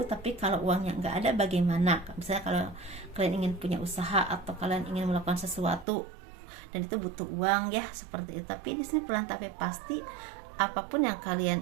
tapi kalau uangnya nggak ada bagaimana? Misalnya kalau kalian ingin punya usaha atau kalian ingin melakukan sesuatu dan itu butuh uang ya, seperti itu. Tapi di sini pelan tapi pasti apapun yang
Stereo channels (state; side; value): drops out; left; at 5.9 s